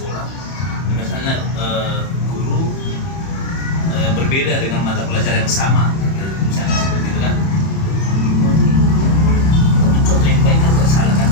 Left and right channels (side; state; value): right; late; 31 ms